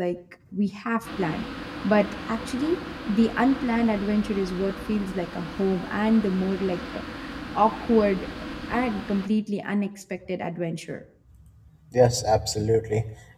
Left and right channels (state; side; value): identical; both; correlation 1.00